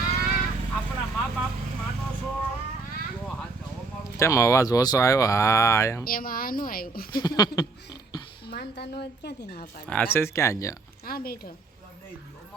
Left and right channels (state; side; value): quieter; left; 3.8 dB